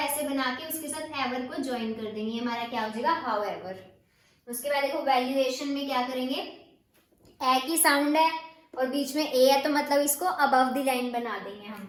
बना के उसके साथ एवर को ज्वाइन कर देंगे, हमारा क्या हो जाएगा हाउ एवर। उसके बाद देखो वैल्यूएशन में क्या करेंगे, ए की साउंड है और बीच में ए है, तो मतलब इसको अबव द लाइन बना देंगे हम,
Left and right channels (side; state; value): both; identical; correlation 1.00